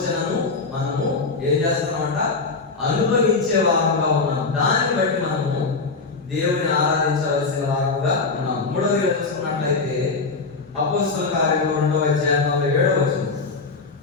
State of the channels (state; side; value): quieter; right; 4.2 dB